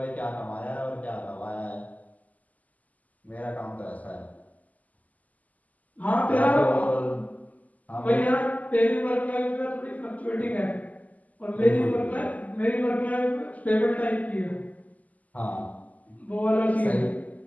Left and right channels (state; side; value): late; right; 0.077 ms